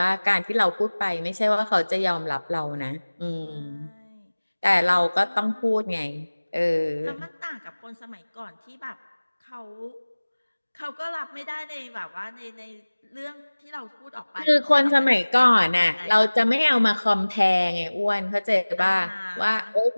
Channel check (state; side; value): inverted; both; correlation -1.00